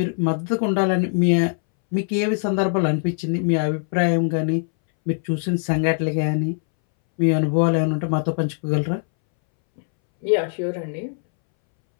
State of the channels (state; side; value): silent; right; 63 dB below the other